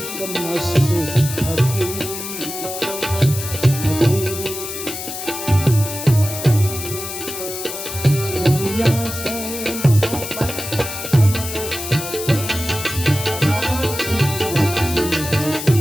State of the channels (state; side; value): noise; left; hiss, 7 dB below the sound